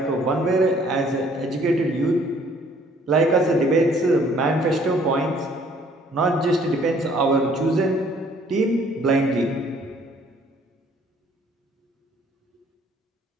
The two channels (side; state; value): both; normal; correlation 0.60